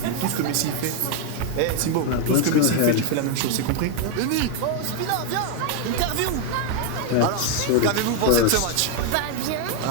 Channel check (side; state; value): both; different; correlation 0.01